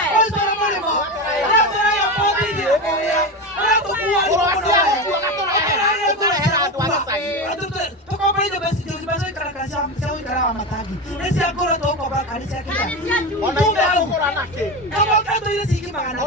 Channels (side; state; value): both; normal; correlation 0.20